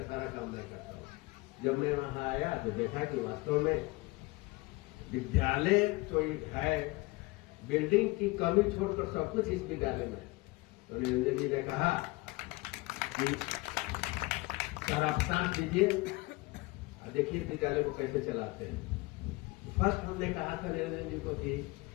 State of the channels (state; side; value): quieter; right; 23.0 dB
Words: सारा काम मैं करता हूँ। जब मैं वहां आया तो देखा कि वास्तव में विद्यालय तो है, बिल्डिंग की कमी छोड़कर सब कुछ इस विद्यालय में। तो निरंजन जी ने कहा कि सर आप शांत कीजिए और देखिए विद्यालय को कैसे चलाते हैं। फर्स्ट हमने कहा था निरंजन जी को कि